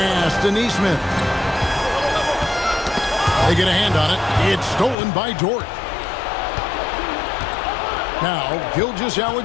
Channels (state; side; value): drops out; right; at 5.0 s